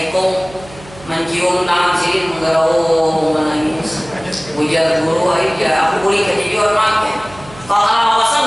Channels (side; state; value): right; noise; hum, 20 dB below the sound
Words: mencium tangan sibin, menggerau, menangis. Ujar guru aja, aku boleh kejadian makin kalau